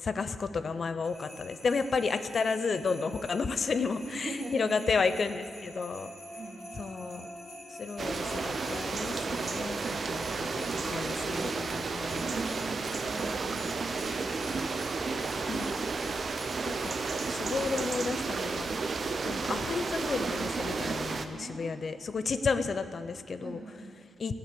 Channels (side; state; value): both; normal; correlation 0.84